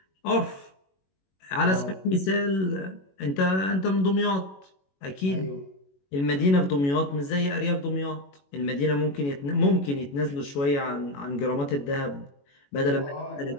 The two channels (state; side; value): late; right; 21 ms